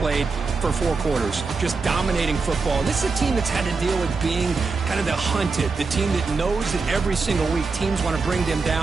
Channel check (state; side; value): quieter; left; 4.4 dB